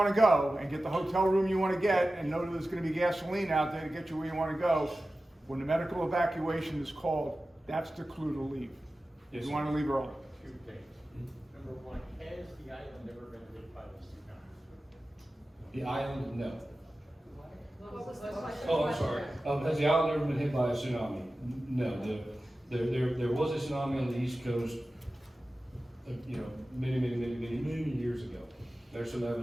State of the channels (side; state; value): both; normal; correlation 0.95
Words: to go and get the hotel room you want to get and know that there's going to be gasoline out there to get you where you want to go, when the medical evacuation is called, that's the clue to leave. Yes, You sir. want to leave early. Two things. Number one, has the island ever been hit by the tsunami? The island, no. What was the question? Oh, I'm sorry. Has the island ever been hit by a tsunami? No. There was a tsunami on the East Coast, many years ago. There's some